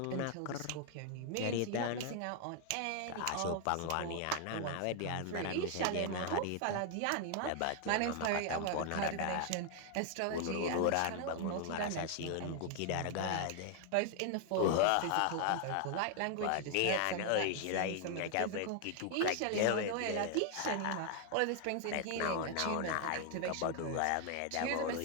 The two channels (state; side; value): different; both; correlation 0.00